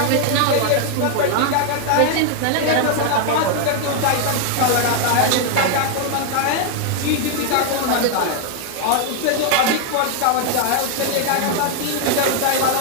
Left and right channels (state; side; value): different; both; correlation 0.00